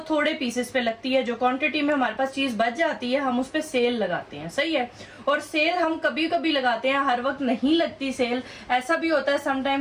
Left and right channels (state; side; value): identical; both; correlation 1.00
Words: थोड़े पीसेस पे लगती है। जो क्वांटिटी में हमारे पास चीज बच जाती है हम उस पे सेल लगाते हैं, सही है। और सेल हम कभी कभी लगाते हैं, हर वक्त नहीं लगती सेल। ऐसा भी होता है